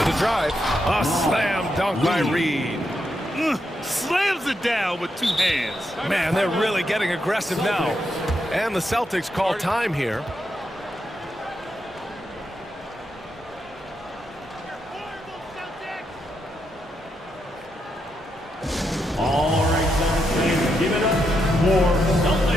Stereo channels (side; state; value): both; normal; correlation 0.82